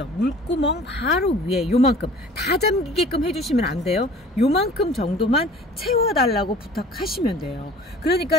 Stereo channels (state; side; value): normal; both; correlation 0.46